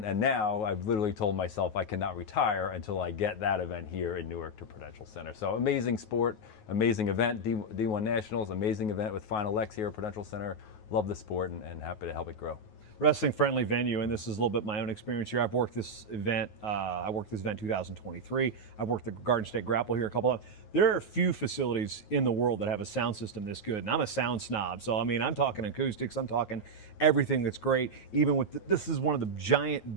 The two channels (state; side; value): late; right; 9.4 ms